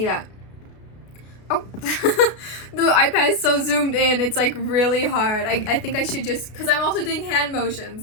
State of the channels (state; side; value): late; right; 33 ms